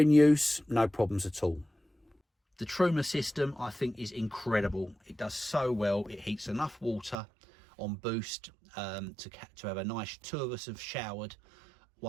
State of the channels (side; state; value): left; drops out; at 7.2 s